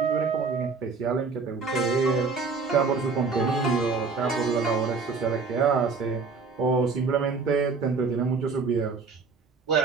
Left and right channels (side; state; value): left; quieter; 4.7 dB